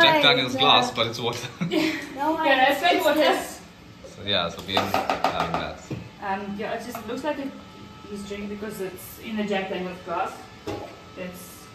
Jack way, Daniel's no. glass, but it's water. No, Yeah, that's like what is. So yeah, so we are having that. Yeah, it just looks like he's drinking because it's in a Jack Daniel's glass. It's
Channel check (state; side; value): identical; both; correlation 1.00